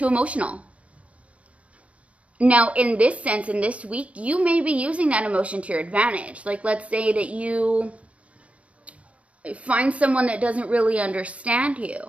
emotional. Now, in this sense, in this week, you may be using that emotion to your advantage. Like, let's say that you find someone that doesn't really understand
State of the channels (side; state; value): left; late; 0.065 ms